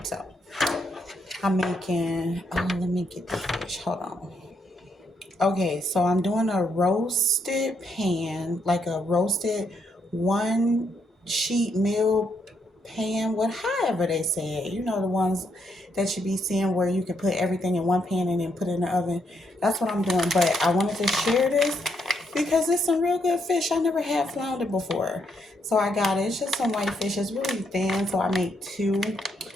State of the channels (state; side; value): normal; both; correlation 0.76